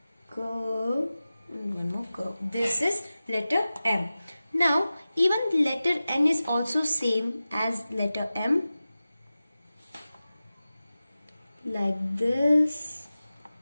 and one more curve. This is letter M. Now even letter N is also same as letter M. Like this.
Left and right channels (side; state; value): both; inverted; correlation -0.95